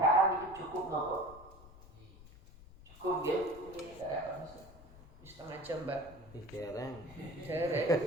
itu cukup nopo? Cukup ya? Setengah jam mbak. Dereng. Dereng.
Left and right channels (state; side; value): noise; left; rumble, 19 dB below the sound